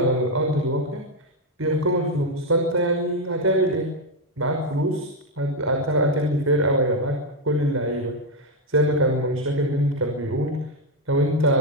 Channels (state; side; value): normal; both; correlation 0.04